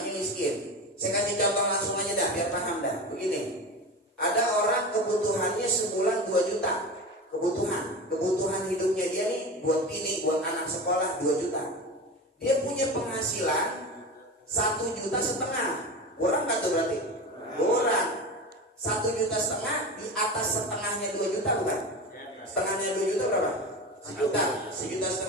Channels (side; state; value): both; normal; correlation 0.27